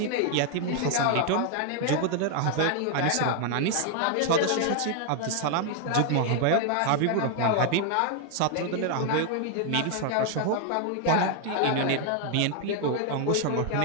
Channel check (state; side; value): different; both; correlation 0.00